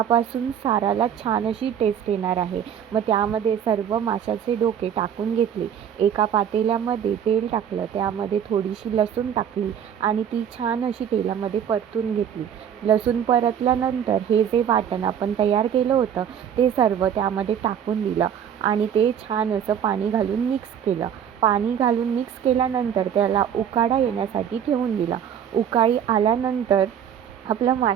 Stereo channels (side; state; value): left; quieter; 8.8 dB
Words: साराला छान अशी टेस्ट येणार आहे. मग त्यामध्ये सर्व माशाचे डोके टाकून घेतले. एका पातेल्यामध्ये तेल टाकलं, त्यामध्ये थोडीशी लसूण टाकली आणि ती छान अशी तेलामध्ये परतून घेतली. लसूण परतल्यानंतर हे जे वाटण आपण तयार केलं होतं ते सर्व त्यामध्ये टाकून दिलं आणि ते छान असं पाणी घालून मिक्स केलं. पाणी घालून मिक्स केल्यानंतर त्याला उकाडा येण्यासाठी ठेवून दिला. उकाळी आल्यानंतर आपलं